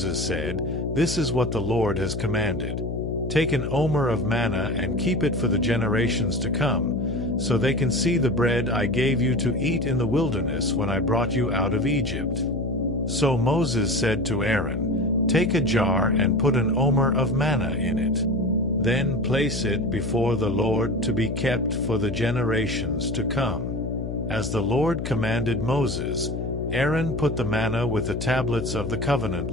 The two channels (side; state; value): left; noise; hum, 4 dB below the sound